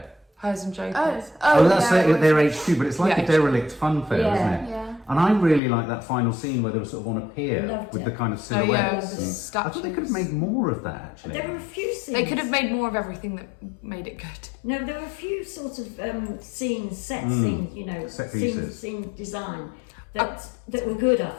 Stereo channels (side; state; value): right; drops out; at 5.6 s